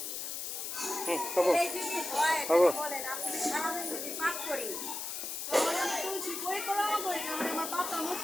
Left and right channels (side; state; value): left; noise; hiss, 5 dB below the sound